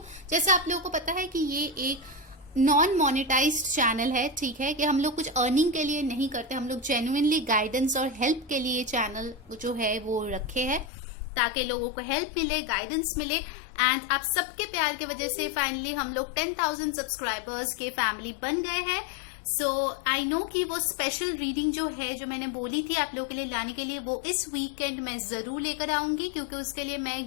जैसे आप लोगों को पता है कि ये एक नॉन मोनेटाइज्ड चैनल है, ठीक है, कि हम लोग कुछ अर्निंग के लिए नहीं करते, हम लोग जेन्युइनली गाइडेंस और हेल्प के लिए चैनल जो है वो रखे हैं ताकि लोगों को हेल्प मिले, गाइडेंस मिले। एंड आप सबके प्यार की वजह से फाइनली हम लोग 10,000 सब्सक्राइबर्स के फैमिली बन गए हैं। सो आई नो कि वो स्पेशल रीडिंग जो है, जो मैंने बोली थी आप लोगों के लिए लाने के लिए, वो इस वीकेंड मैं जरूर लेकर आऊंगी, क्योंकि उसके लिए मैं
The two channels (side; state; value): right; drops out; at 10.9 s